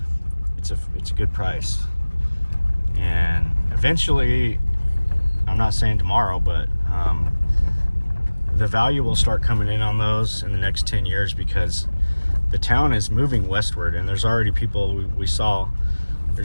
it's a good price. And eventually, I'm not saying tomorrow, but the value will start coming in on those in the next 10 years, because the town is moving westward, and there's already people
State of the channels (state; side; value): inverted; both; correlation -1.00